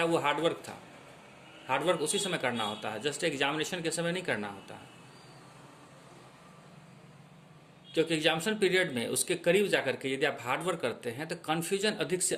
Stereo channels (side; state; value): both; identical; correlation 1.00